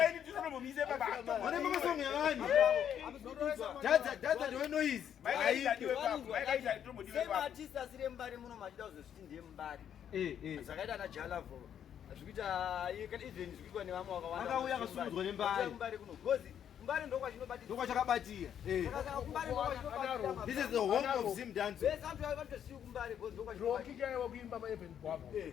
Init tinomumise baba. Vanobva masongo evani. Dadza ndiwe noise. Mike Init adiwe baba. Mike Init atomudiwe same baba. artist asire Mbare muno machida uzosviti ndiye Mbare Eh. zvakaita na Jalavo zvikuita even zvikuitwa nevamwe wakawanda Akauya akasumudzwa neMbare. Mbare kuno because Mbare ndokwachinobatira Ndokwachakabatira. This is the home of Zimdancehall. vese antu avatosiyi kuMbare because rokikaiwa kuimba maevent gwavo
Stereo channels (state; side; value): quieter; right; 9.2 dB